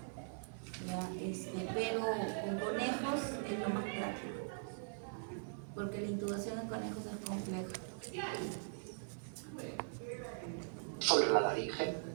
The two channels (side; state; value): left; silent; 50 dB below the other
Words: ya, pero con conejos es lo más práctico, porque la intubación en conejos es compleja. Sobre la laringe,